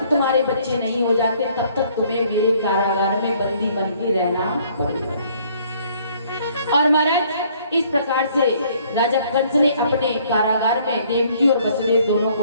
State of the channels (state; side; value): inverted; both; correlation -0.61